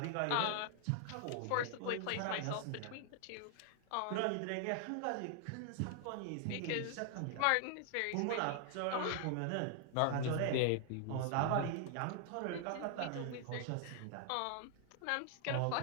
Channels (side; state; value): both; different; correlation 0.00